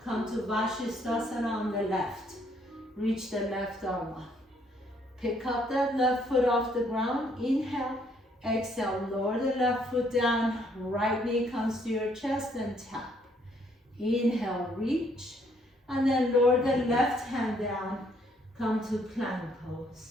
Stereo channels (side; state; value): both; normal; correlation 0.68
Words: Come to Vashisthasana on the left. Reach the left arm up. Pick up that left foot off the ground. Inhale. Exhale, lower the left foot down, right knee comes to your chest and tap. Inhale, reach, and then lower the left hand down, come to plank